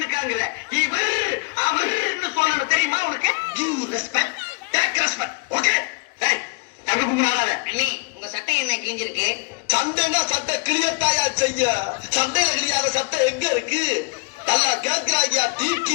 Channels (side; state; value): right; quieter; 29.7 dB